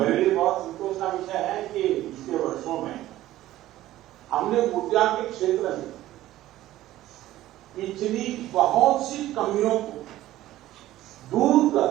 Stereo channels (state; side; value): quieter; left; 14.9 dB